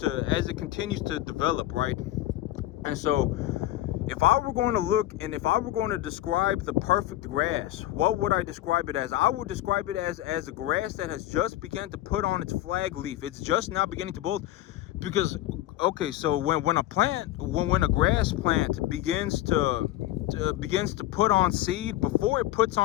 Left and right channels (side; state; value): right; quieter; 14.9 dB